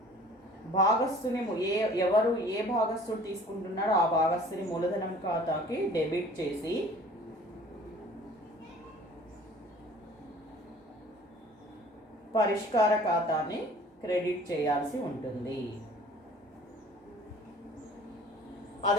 భాగస్థుని ఎవరు ఏ భాగస్థుడు తీసుకుంటున్నాడో ఆ భాగస్థుని మూలధనం ఖాతాకి డెబిట్ చేసి పరిష్కార ఖాతాని క్రెడిట్ చేయాల్సి ఉంటుంది.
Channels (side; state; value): both; normal; correlation 0.49